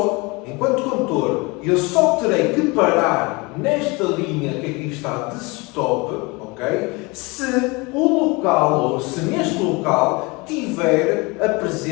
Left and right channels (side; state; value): right; quieter; 26.3 dB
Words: enquanto condutor, eu só terei que parar nesta linha que aqui está de stop, ok? Se o local, ou se neste local, tiver a